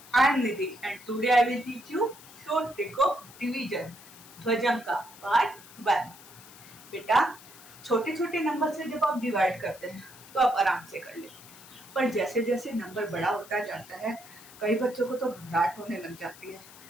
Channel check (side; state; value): left; noise; hiss, 19 dB below the sound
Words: I am Nidhi and today I will teach you short trick of division ध्वजांक part 1. बेटा, छोटे छोटे number से जब आप divide करते हैं तो आप आराम से कर लेते हैं, पर जैसे जैसे नंबर बड़ा होता जाता है कई बच्चों को तो घबराहट होने लग जाती है